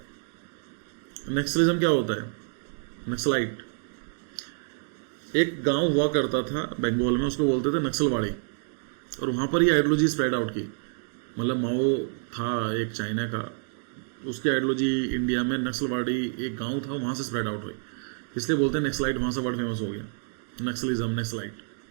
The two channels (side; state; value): left; silent; digital silence